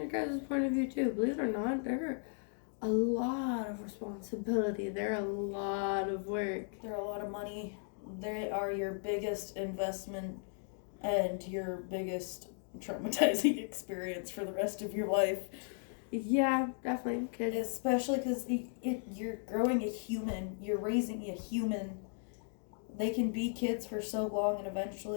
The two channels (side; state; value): right; silent; 54 dB below the other